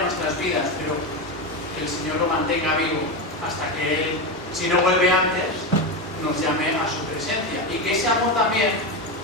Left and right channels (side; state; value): both; normal; correlation 0.15